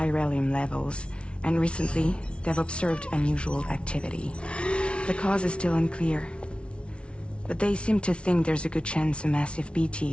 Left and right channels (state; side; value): late; right; 0.059 ms